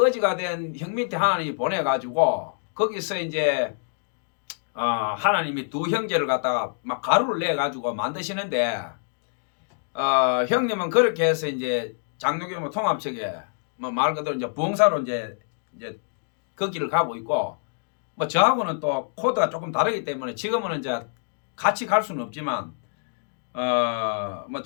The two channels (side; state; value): right; silent; digital silence